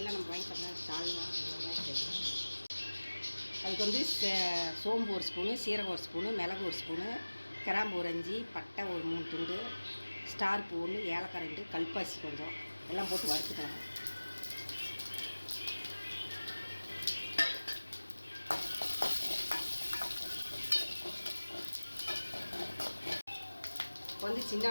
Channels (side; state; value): both; inverted; correlation -1.00